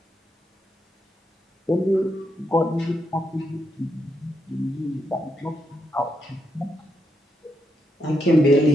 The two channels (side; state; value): both; normal; correlation 0.81